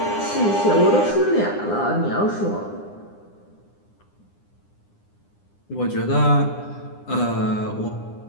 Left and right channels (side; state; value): right; late; 9.8 ms